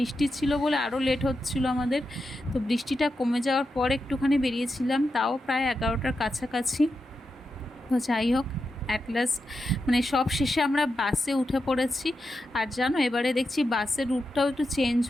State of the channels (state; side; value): normal; both; correlation 0.88